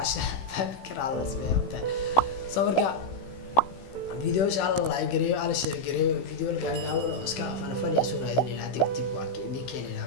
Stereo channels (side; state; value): right; late; 16 ms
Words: fikir alla sameeyay soo marka video inshallah like gareeyo ala share gareeyo video gaaban oo iska fanfani soo raadinayna dib waa keenay keenayna